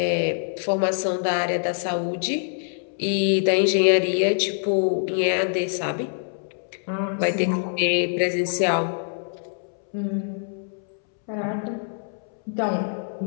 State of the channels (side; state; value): right; silent; 62 dB below the other